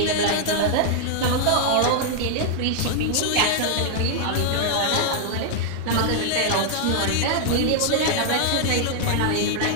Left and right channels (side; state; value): both; different; correlation -0.01